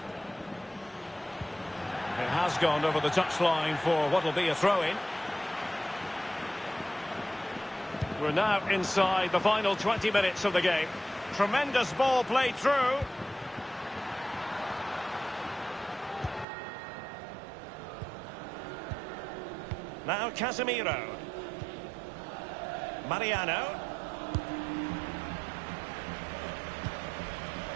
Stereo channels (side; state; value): left; drops out; at 16.4 s